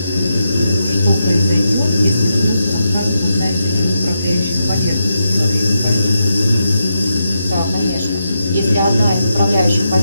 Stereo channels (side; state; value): both; inverted; correlation -0.84